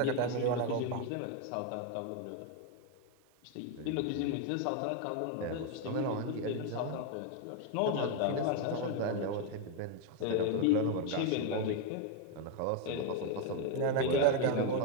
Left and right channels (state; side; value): different; both; correlation 0.01